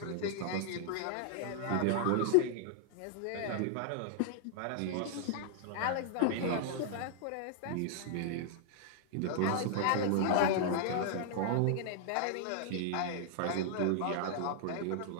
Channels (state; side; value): different; both; correlation -0.01